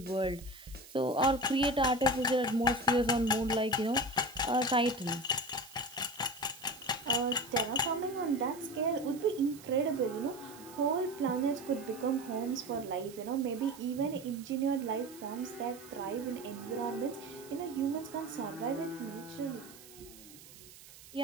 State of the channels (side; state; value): right; noise; hiss, 19 dB below the sound